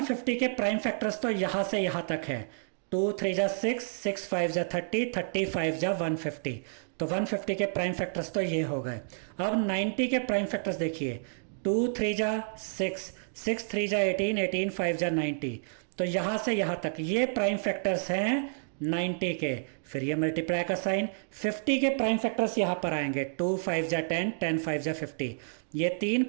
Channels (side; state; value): left; silent; digital silence